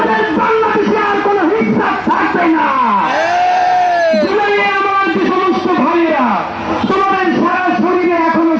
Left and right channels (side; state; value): both; identical; correlation 1.00